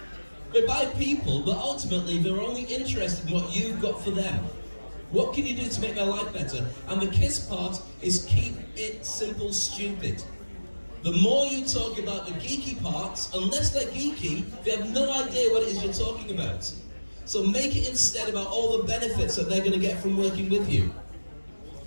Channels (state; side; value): inverted; both; correlation -1.00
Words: they buy people, but ultimately they're only interested in what you've got for them. What can you do to make their life better? And the KISS part is keep it simple, stupid. The more you talk about the geeky parts, unless they're geeky, they have no idea what it is you're talking about. So make it instead about all the benefits that they're going to get from working with you.